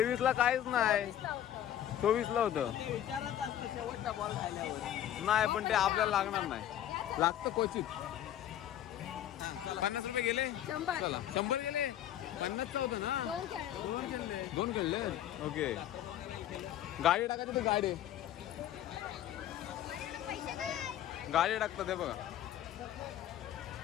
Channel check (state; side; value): quieter; right; 11.5 dB